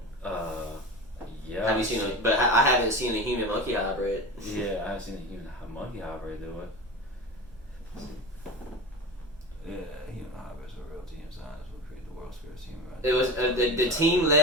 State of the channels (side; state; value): right; noise; rumble, 23 dB below the sound